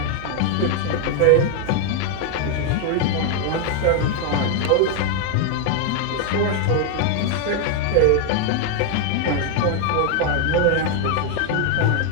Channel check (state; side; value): different; both; correlation 0.01